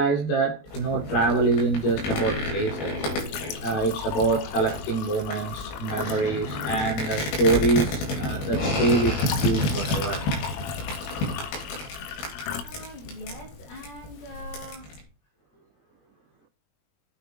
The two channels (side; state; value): right; late; 21 ms